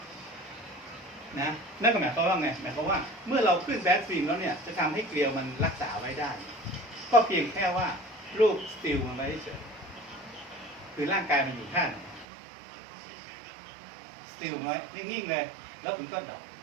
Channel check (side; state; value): left; drops out; at 12.2 s